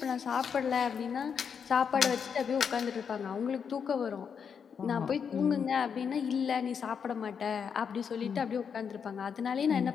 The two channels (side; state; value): right; quieter; 6.8 dB